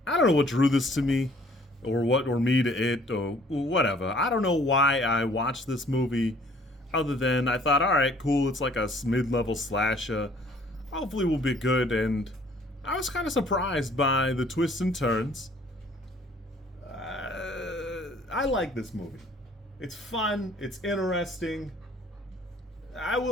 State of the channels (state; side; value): normal; both; correlation 0.57